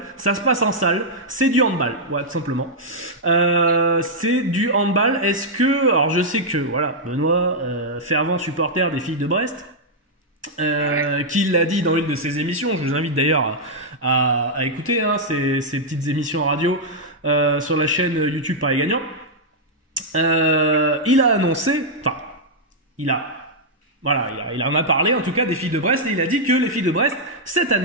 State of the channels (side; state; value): both; normal; correlation -0.06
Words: Ça se passe en salle, c'est du handball, ouais, tout simplement. C'est du handball. Est-ce que, alors je sais que, voilà, Benoît, fervent supporter des filles de Brest, qui l'a dit dans une de ses émissions, je vous invite d'ailleurs à écouter ces petites émissions radio sur la chaîne YouTube Paris Gagnant. Il a annoncé, enfin, il en a parlé en tout cas des filles de Brest et il a dit que les filles de Brest cette